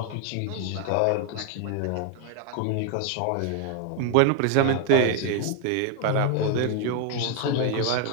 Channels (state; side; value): different; both; correlation 0.01